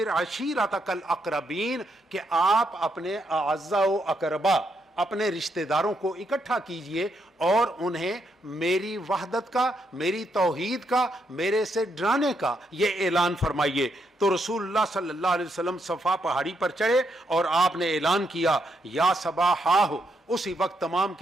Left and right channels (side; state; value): both; normal; correlation 0.78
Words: عَشِيرَتَكَ الْأَقْرَبِينَ، کہ آپ اپنے اعزاء و اقربا، اپنے رشتہ داروں کو اکٹھا کیجئے اور انہیں میری وحدت کا، میری توحید کا، میرے سے ڈرانے کا یہ اعلان فرمائیے۔ تو رسول اللہ صلی اللہ علیہ وسلم صفا پہاڑی پر چڑھے اور آپ نے اعلان کیا، یا صباحہ اسی وقت تمام